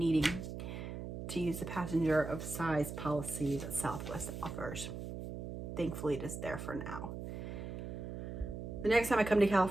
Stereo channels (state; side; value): noise; right; hum, 7 dB below the sound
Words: to use the passenger of size policy that Southwest offers. Thankfully, it is there for now. The next time I come to